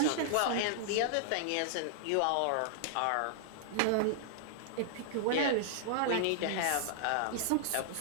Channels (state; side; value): different; both; correlation -0.01